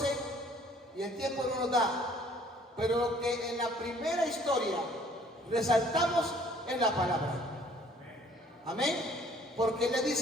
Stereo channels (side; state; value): both; normal; correlation 0.58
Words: y el tiempo no nos da. Pero lo que en la primera historia resaltamos es la palabra. Amén. Porque le